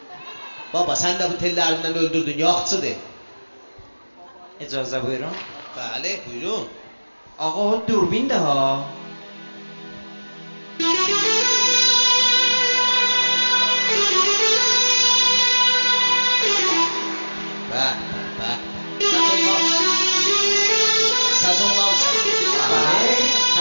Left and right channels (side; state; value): both; inverted; correlation -1.00